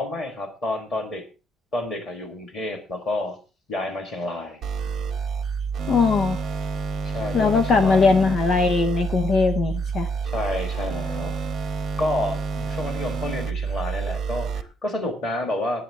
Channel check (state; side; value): normal; both; correlation 0.74